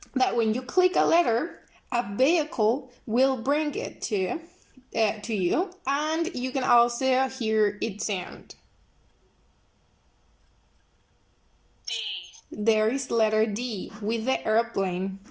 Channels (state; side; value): identical; both; correlation 1.00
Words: that when you click a letter, a vehicle will bring it to you, and you can also hear its sound. D. There is letter D with the airplane.